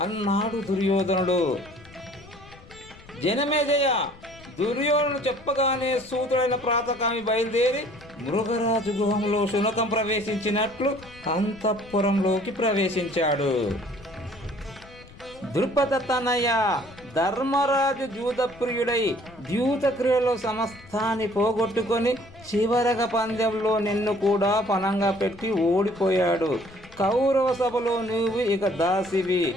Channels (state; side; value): noise; left; rumble, 22 dB below the sound